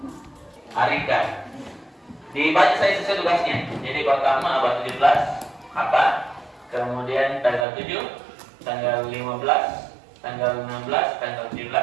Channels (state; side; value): drops out; left; at 7.7 s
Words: Arikan. Dibaca saya sesuai tugasnya. Jadi pertama abad 17 apa? Kemudian tanggal 7, tanggal 15, tanggal 16, tanggal 17.